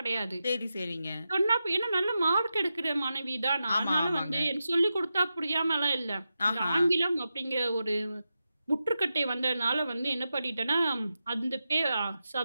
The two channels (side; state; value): both; inverted; correlation -0.90